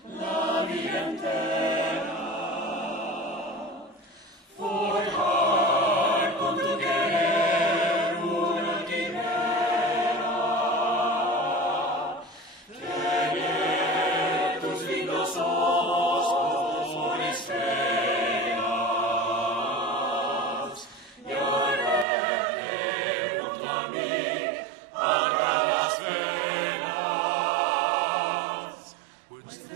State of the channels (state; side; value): drops out; left; at 22.1 s